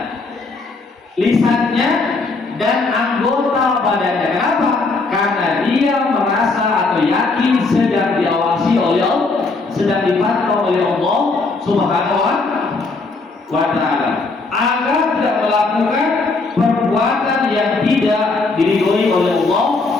lisannya dan anggota badannya. Kenapa? Karena dia merasa atau yakin sedang diawasi oleh Allah, sedang dipantau oleh Allah Subhanahu wa Ta'ala, agar tidak melakukan perbuatan yang tidak diridhoi oleh Allah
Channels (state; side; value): quieter; right; 3.7 dB